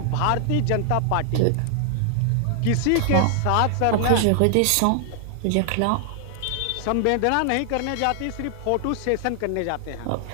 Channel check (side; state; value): both; different; correlation 0.00